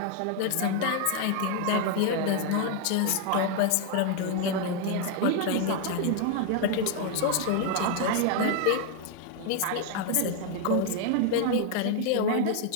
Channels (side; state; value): both; different; correlation 0.00